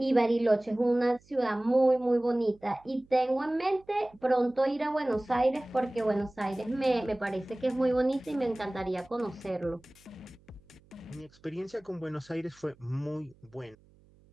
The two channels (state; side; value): noise; right; hum, 29 dB below the sound